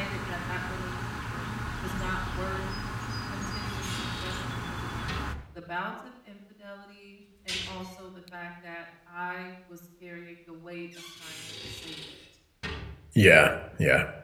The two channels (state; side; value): identical; both; correlation 1.00